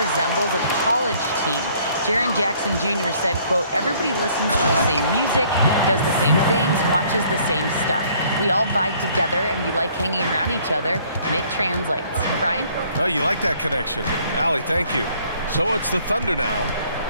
a college team. Jaren Jackson Jr. said, quote, everybody listens to the same music, does the same things, watches the same stuff. We all vibe together and we like hanging around each other, and it translates. Brian? Oh, you like that connection. Allie, thank you. So it's the Thunder now.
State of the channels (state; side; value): inverted; both; correlation -0.60